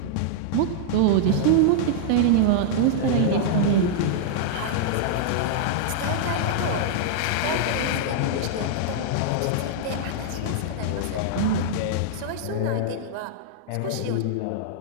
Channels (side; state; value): both; different; correlation -0.01